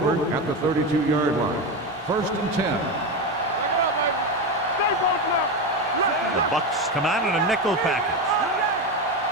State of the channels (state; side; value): normal; both; correlation 0.16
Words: at the 32-yard line. 1st and 10. The Bucks come out in a nickel package.